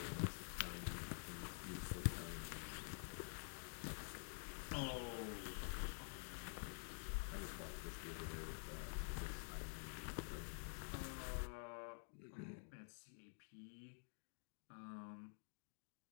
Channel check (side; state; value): right; silent; digital silence